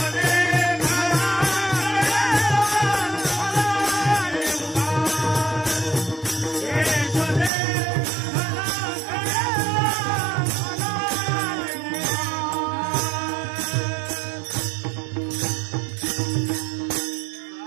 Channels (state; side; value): drops out; left; at 7.5 s